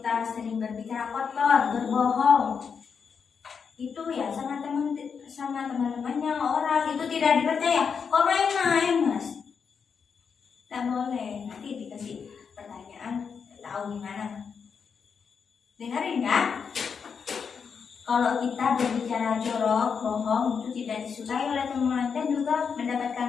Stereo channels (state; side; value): quieter; right; 6.2 dB